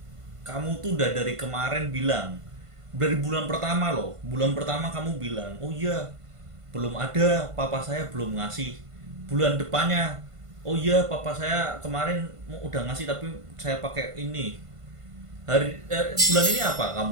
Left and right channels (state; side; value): late; left; 1.5 ms